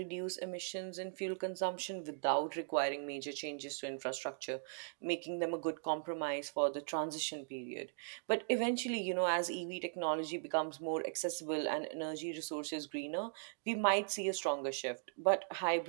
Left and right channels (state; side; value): silent; left; digital silence